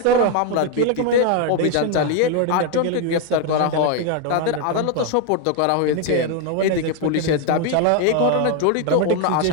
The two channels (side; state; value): both; different; correlation 0.01